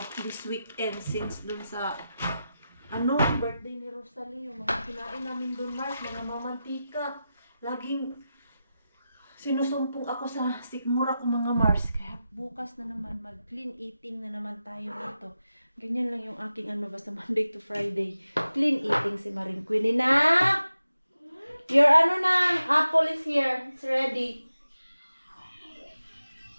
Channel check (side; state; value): both; inverted; correlation -0.91